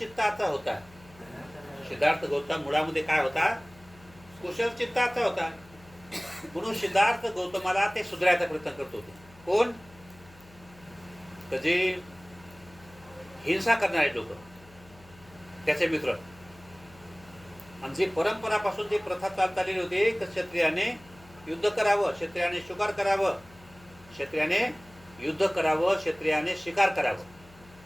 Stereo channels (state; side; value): noise; left; hum, 24 dB below the sound